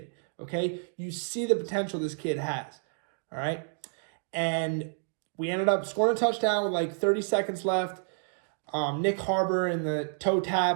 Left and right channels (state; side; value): silent; left; digital silence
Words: Okay? You see the potential this kid has. All right? And we ended up scoring a touchdown with like 30 seconds left. Nick Harbor in the toe